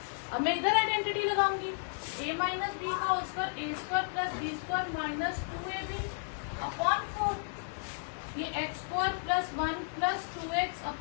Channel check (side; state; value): right; silent; 56 dB below the other